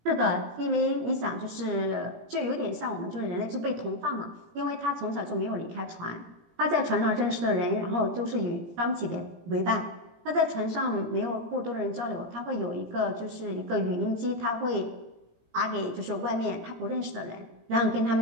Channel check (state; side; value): late; left; 18 ms